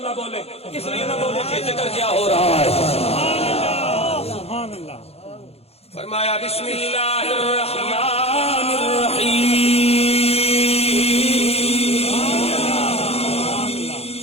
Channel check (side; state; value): right; late; 0.29 ms